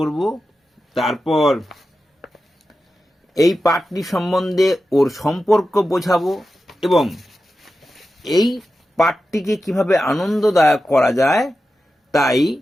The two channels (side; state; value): both; normal; correlation 0.92